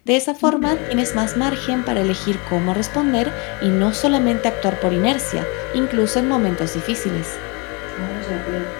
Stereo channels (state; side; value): quieter; right; 30.2 dB